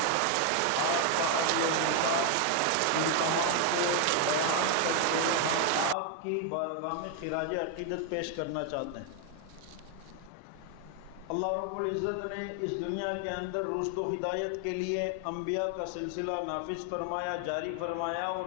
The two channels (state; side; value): different; both; correlation 0.01